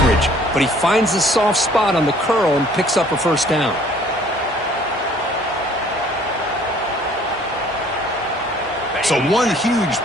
But he finds the soft spot on the curl and picks up a first down. So one huge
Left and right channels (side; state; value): both; normal; correlation 0.56